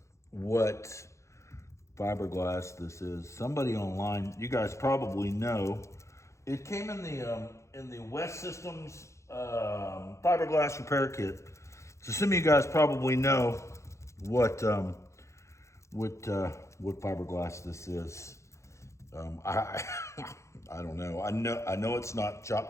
what fiberglass this is. Somebody online, you guys probably know. It came in the West Systems fiberglass repair kit. So some of you guys probably know what fiberglass this is. I don't know. I know it's not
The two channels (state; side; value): late; right; 0.14 ms